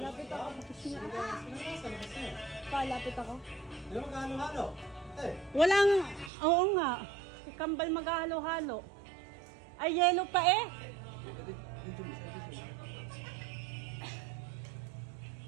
ako. Palapit ako. Hindi mo magkano-halo? Eh! Walang, oo nga. Si Kambal maghahalo-halo. Ay, yelo pa eh.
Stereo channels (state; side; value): drops out; left; at 6.3 s